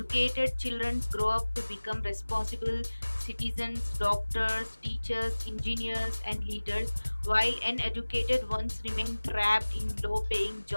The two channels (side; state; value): both; inverted; correlation -1.00